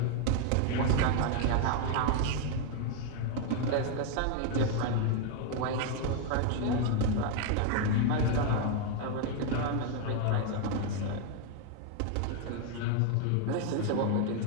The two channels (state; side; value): different; both; correlation 0.00